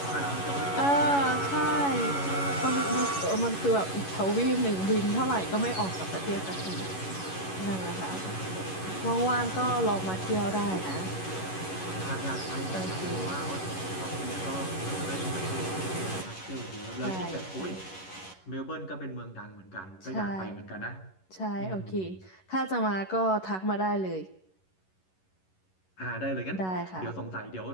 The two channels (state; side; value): late; right; 11 ms